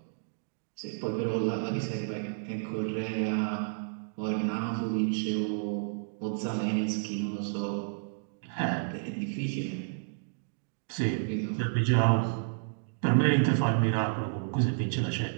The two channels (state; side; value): silent; left; digital silence